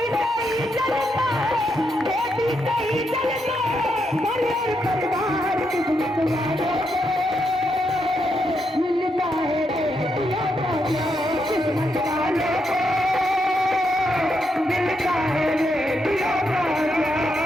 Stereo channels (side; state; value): both; normal; correlation 0.81